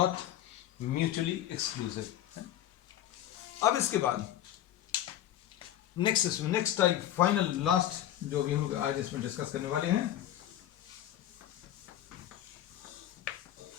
mutually exclusive. अब इसके बाद नेक्स्ट टाइप, फाइनल लास्ट जो भी हम लोग आज इसमें डिस्कस करने वाले हैं,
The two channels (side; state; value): right; quieter; 12.3 dB